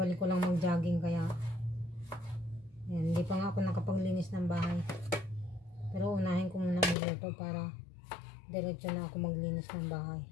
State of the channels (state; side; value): drops out; right; at 7.0 s